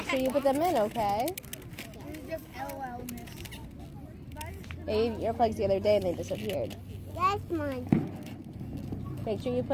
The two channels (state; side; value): identical; both; correlation 1.00